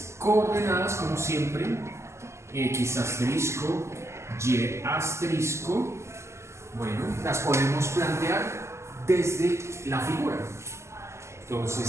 coordenadas, como siempre, X asterisco, Y asterisco, bueno, las podemos plantear desde la figura.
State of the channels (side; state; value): left; late; 0.13 ms